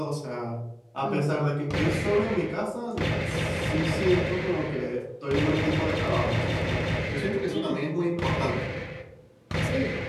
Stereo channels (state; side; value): identical; both; correlation 1.00